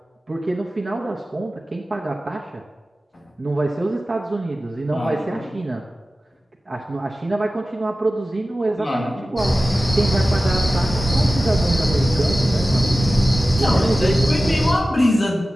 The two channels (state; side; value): normal; both; correlation 0.95